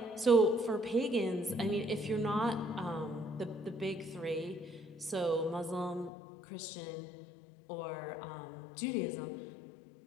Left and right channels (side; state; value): right; drops out; at 6.1 s